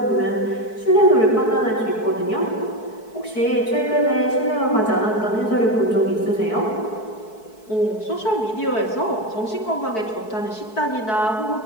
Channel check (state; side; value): late; right; 4.6 ms